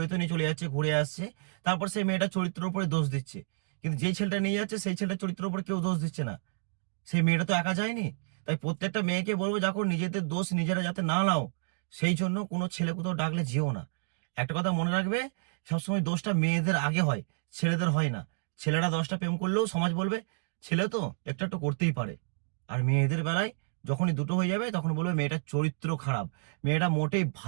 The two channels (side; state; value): left; silent; digital silence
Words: নিয়ে চলে যাচ্ছে, ঘুরে আসছে, তারপর সেই মেয়েটার চরিত্রের উপরে দোষ দিচ্ছে। কিন্তু যেই ছেলেটা নিয়ে যাচ্ছে সেই ছেলেটার চরিত্রের উপরে কেউ দোষ দিচ্ছে না, সেই মেয়েটা তো একা যায়নি। তাই প্রত্যেকটা মেয়েকে বলবো, দেখো নিজেদের দোষ নিজেরা যাতে না নাও, সেই জন্য কোনো ছেলে কোথাও ডাকলে যেও না। একটা কথা মনে রাখবে, সবসময় দোষটা মেয়েদের আগে হয়, ছেলেদের হয় না। ছেলেরা 10টা প্রেম করলেও সমাজ বলবে ছেলে তো একটু একটু করতেই পারে। আর মেয়েদের বেলায় যখনই দুটো হয়ে যাবে তখন বলবে মেয়েটার চরিত্র খারাপ, মেয়েটা মোটেই